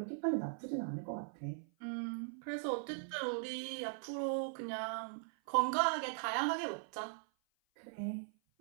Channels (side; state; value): left; silent; 51 dB below the other